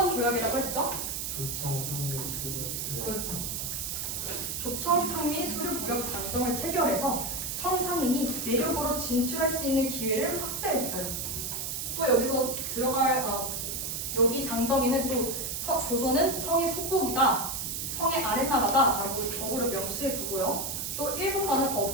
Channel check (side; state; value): right; noise; hiss, 3 dB below the sound